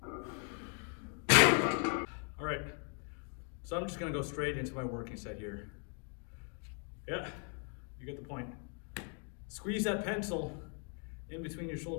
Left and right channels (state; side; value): quieter; right; 39.8 dB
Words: All right, so I'm just gonna go straight into my working set here. Yeah, you get the point. Squeeze that pencil in between your